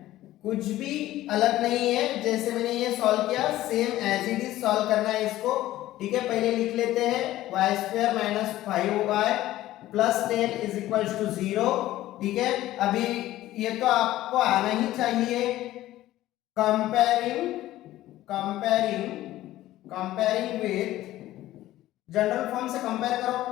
कुछ भी अलग नहीं है, जैसे मैंने ये सॉल्व किया same as it is solve करना है इसको, ठीक है। पहले लिख लेते हैं y² - 5y + 10 = 0, ठीक है। अभी ये तो आपको आना ही चाहिए। कंपेयरिंग विथ, जनरल फॉर्म से कंपेयर करो,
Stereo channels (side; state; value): right; quieter; 15.1 dB